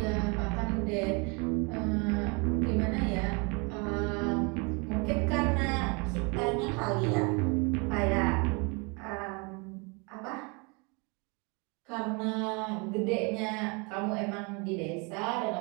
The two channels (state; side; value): quieter; left; 31.1 dB